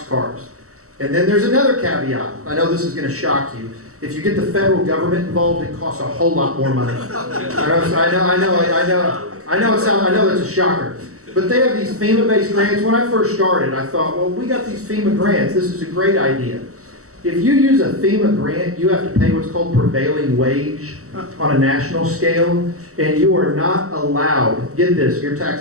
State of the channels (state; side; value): late; left; 0.65 ms